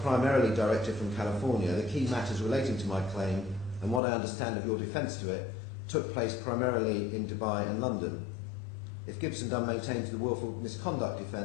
directed from California, the key matters relating to my claim and what I understand of your defence to it took place primarily in Dubai and London. If Gibson Dunn maintains the willful misconduct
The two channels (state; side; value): drops out; right; at 4.0 s